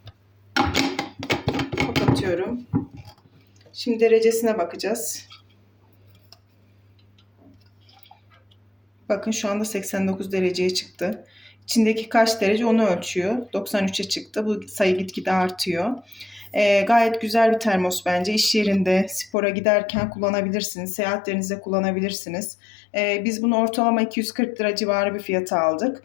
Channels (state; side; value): drops out; right; at 19.3 s